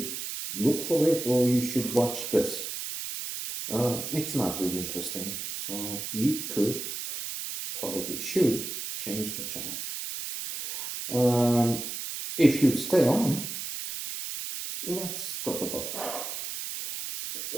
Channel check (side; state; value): right; noise; hiss, 6 dB below the sound